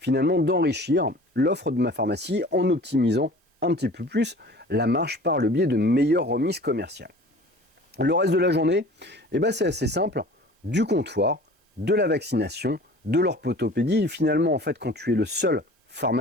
d'enrichir l'offre de ma pharmacie en optimisant un petit peu plus la marge par le biais de meilleures remises commerciales. Le reste de la journée, c'est assez simple, du comptoir, de la vaccination, de l'orthopédie. Finalement, en fait, quand tu es le seul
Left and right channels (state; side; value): normal; both; correlation 0.44